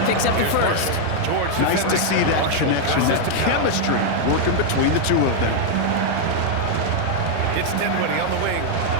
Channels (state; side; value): different; both; correlation 0.00